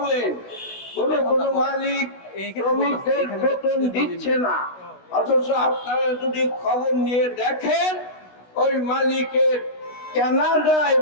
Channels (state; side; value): late; right; 16 ms